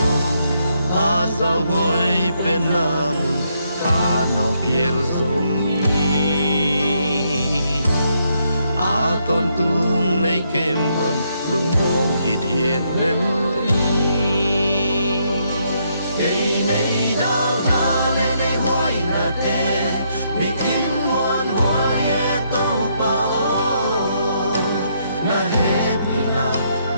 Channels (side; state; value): both; inverted; correlation -0.75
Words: a zao goi pen na mun khá nào biel zong a ton tung nay kem man lung mong hít hiện lên đây này đào na lên đây hoài na te bị in muôn hoài e tô pa o na happy